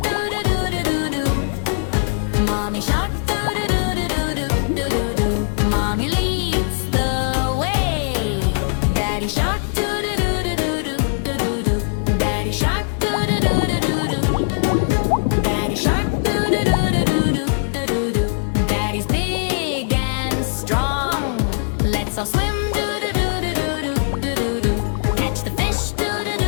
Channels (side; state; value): right; silent; digital silence